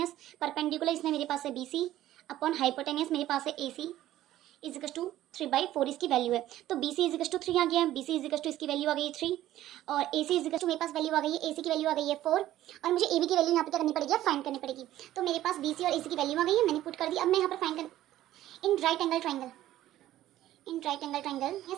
परपेंडिकुलर इसमें मेरे पास है बी सी अपॉन हाइपोटेनियस मेरे पास है A C is equal to 3/4 इसकी वैल्यू है। तो B C is equal to 3 आ गया, B C is equal to इसकी वैल्यू आ गई है 3 और A C is equal to मेरे पास वैल्यू आ गई है, ए सी की वैल्यू आ गई है 4 और मुझे ए बी की वैल्यू यहाँ पे क्या करनी पड़ेगी, फाइंड करनी पड़ेगी। तो मेरे पास बी सी और ए सी की वैल्यू आ गई है, मैंने पुट कर दी। अब मैं यहाँ पर फाइंड कर in right angle triangle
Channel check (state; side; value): quieter; left; 13.8 dB